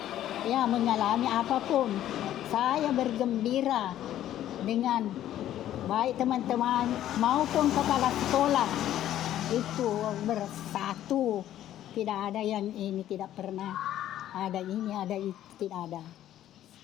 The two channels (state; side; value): quieter; right; 12.3 dB